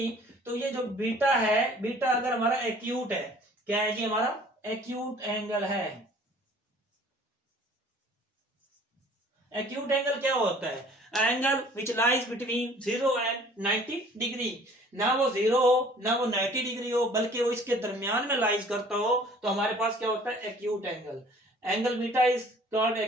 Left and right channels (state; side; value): normal; both; correlation 0.52